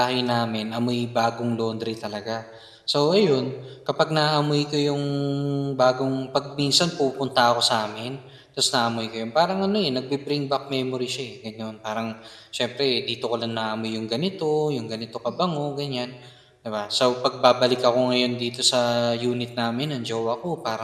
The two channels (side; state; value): both; identical; correlation 1.00